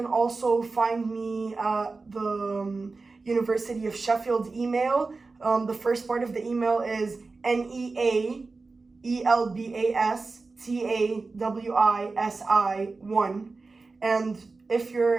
also find me at the University of Sheffield email. The first part of the email is NEAELBASTAWISI1, and if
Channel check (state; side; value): quieter; left; 3.9 dB